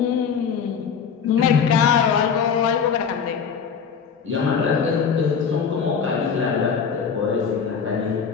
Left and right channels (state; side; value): quieter; right; 6.6 dB